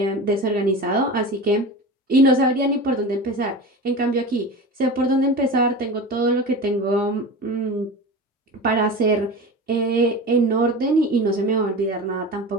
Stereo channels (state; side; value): normal; both; correlation 0.30